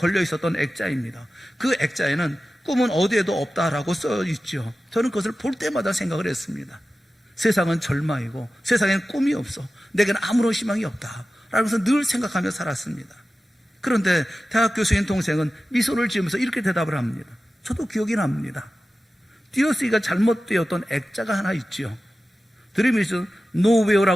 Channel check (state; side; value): normal; both; correlation 0.94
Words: 있었던 액자입니다. 그 액자에는 꿈은 어디에도 없다라고 써 있죠. 저는 그것을 볼 때마다 생각을 했습니다. 세상은 절망이고 세상엔 꿈이 없어. 내게는 아무런 희망이 없다. 라면서 늘 생각하며 살았습니다. 그런데 대학 교수인 동생은 미소를 지으면서 이렇게 대답을 합니다. 저도 기억이 납니다. 띄어쓰기가 잘못되었던 액자가 하나 있지요. Dream is